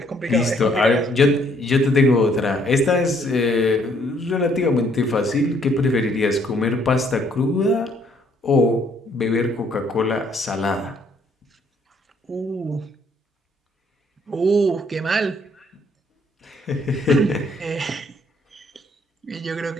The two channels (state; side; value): normal; both; correlation 0.66